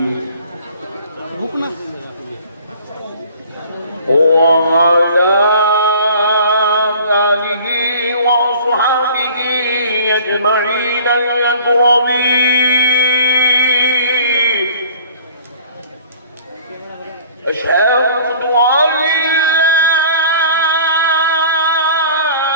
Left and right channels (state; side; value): inverted; both; correlation -0.48